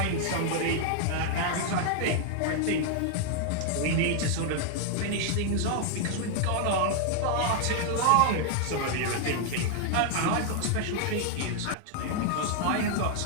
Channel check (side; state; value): both; different; correlation 0.00